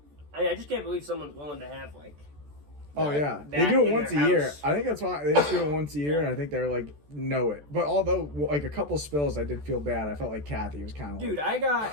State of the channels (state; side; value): late; left; 14 ms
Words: I just can't believe someone's willing to have, like... Oh yeah, they that do it in once a their year. house. I think that's why they just do it once a year, and I think they're like know it. But although like a couple spills, I did feel bad. I felt like Kathy was kind of. Dude,